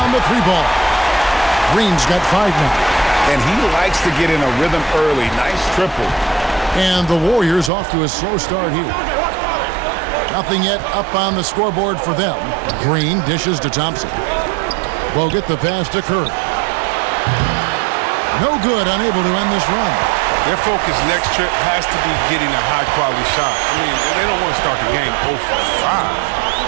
the three ball. Green's got 5 now. And he likes to get in a rhythm early. Nice triple. And the Warriors off to a slow start here. Nothing yet up on the scoreboard for them. Green dishes to Thompson. Bogut the pass to Curry. No good, unable to end this run. Their focus next trip has to be getting a high-quality shot. I mean, they don't want to start the game 0 for 5.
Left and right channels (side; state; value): left; drops out; at 7.7 s